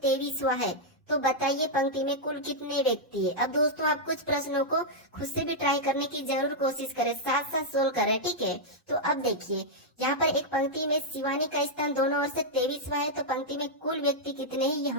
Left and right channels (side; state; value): both; normal; correlation -0.05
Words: 23वां है तो बताइए पंक्ति में कुल कितने व्यक्ति है। अब दोस्तों आप कुछ प्रश्नों को खुद से भी ट्राई करने की जरूर कोशिश करें, साथ साथ सोल्व करें। ठीक है, तो अब देखिए यहाँ पर एक पंक्ति में शिवानी का स्थान दोनों ओर से 23वां है तो पंक्ति में कुल व्यक्ति कितने हैं ये